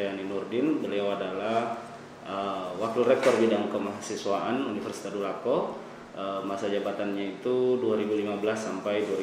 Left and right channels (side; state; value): both; identical; correlation 1.00